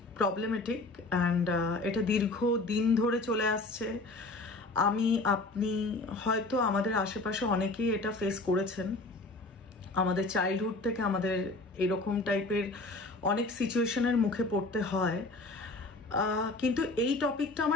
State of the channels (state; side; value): quieter; right; 3.1 dB